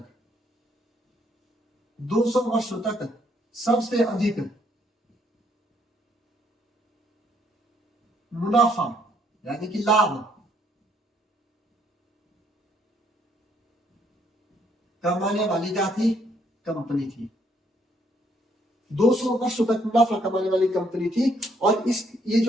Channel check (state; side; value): normal; both; correlation 0.69